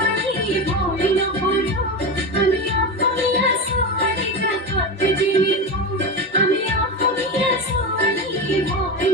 ভৰি নকৰো আমি অসমীয়া ছোৱালী জাকতে জিলিকো আমি অসমীয়া ছোৱালী ভৰি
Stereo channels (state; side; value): normal; both; correlation 0.20